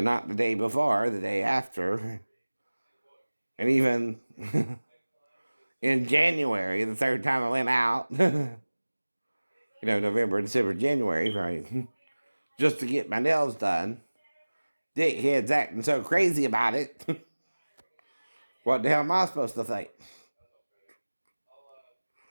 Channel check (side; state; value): both; inverted; correlation -1.00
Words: not the day before, the day after. And even in January, the third time I went out, November, December, January, right? Just to get my nails done. Dickheads acting so crazy about it. What the hell am I supposed to think?